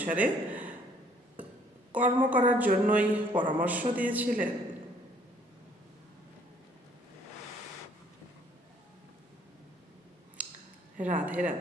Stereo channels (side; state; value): both; normal; correlation 0.61